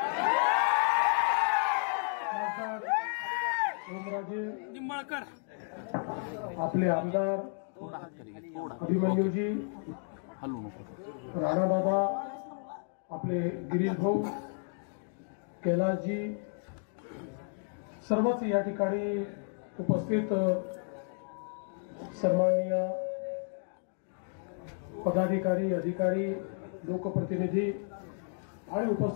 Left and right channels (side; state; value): right; silent; 56 dB below the other